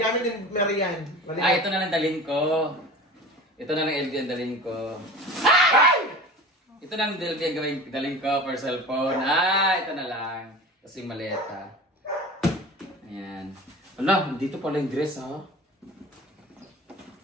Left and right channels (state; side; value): normal; both; correlation 0.36